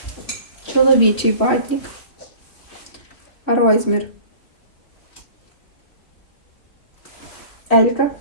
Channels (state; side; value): late; right; 3.0 ms